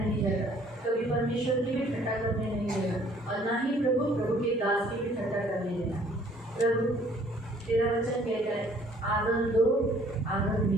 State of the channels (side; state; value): both; normal; correlation 0.59